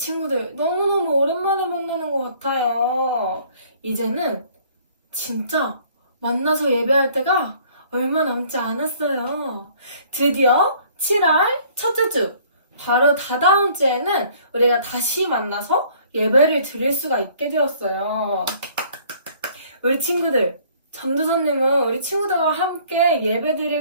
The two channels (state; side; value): inverted; both; correlation -0.57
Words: 너무너무 오랜만에 만나는 것 같아요. 이제는 진짜 만나서 예배할 때가 얼마 남지 않았어요. 드디어 7월 첫째 주, 바로 다다음 주에는 우리가 다시 만나서 예배를 드릴 수가 있게 되었어요. 우리 친구들, 전도사님은 우리 친구들과 함께